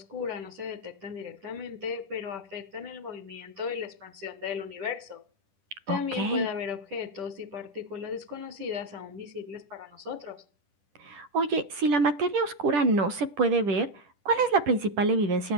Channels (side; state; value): left; late; 10 ms